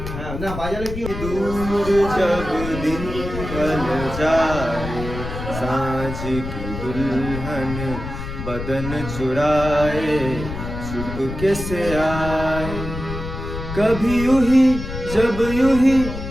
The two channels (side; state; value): left; noise; rumble, 7 dB below the sound